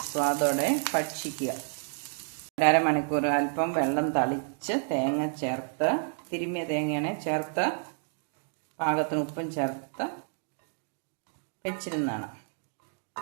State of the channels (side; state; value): left; silent; 58 dB below the other